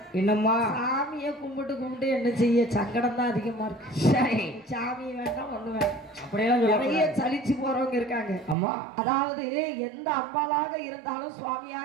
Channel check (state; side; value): drops out; left; at 8.6 s